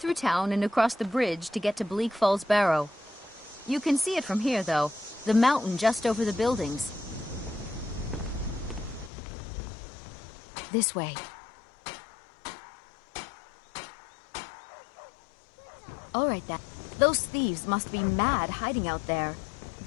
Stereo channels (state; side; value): drops out; right; at 9.1 s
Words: town and across the bridge to get to Bleak Falls Barrow. You can see it from here, though. The mountain just over the buildings. This way. All right, then. Those thieves must be mad hiding out there.